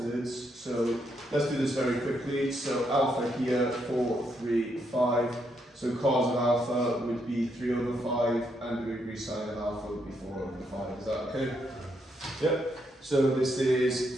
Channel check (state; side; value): normal; both; correlation 0.77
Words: So let's do this very quickly. So alpha here, 4, 3, 5. So cos of alpha would be 3/5, and the degree sine of alpha would be 4/5. Is that okay? Yep. So this